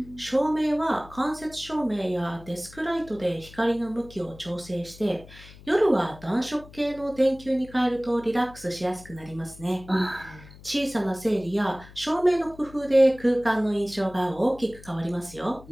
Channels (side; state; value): left; noise; hum, 20 dB below the sound